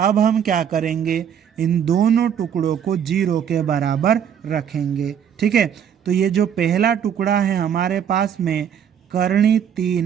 हम क्या करेंगे, इन दोनों टुकड़ों को 0 के बराबर रखेंगे। ठीक है, तो ये जो पहला टुकड़ा है हमारे पास में करनी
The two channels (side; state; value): left; quieter; 8.5 dB